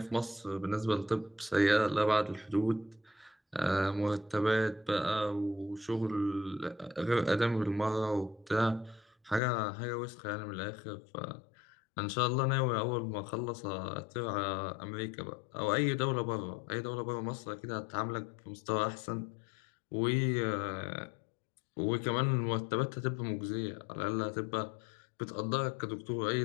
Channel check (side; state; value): right; drops out; at 9.4 s